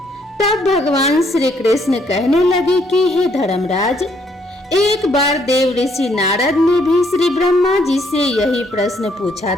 तब भगवान श्री कृष्ण कहने लगे कि हे धर्मराज, एक बार देव ऋषि नारद ने भी श्री ब्रह्मा जी से यही प्रश्न पूछा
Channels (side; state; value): both; normal; correlation 0.69